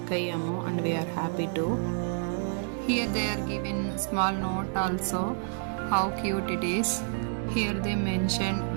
అయ్యాము. And we are happy to hear they are given small note also. How cute it is. Here they mentioned,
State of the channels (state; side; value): silent; left; 59 dB below the other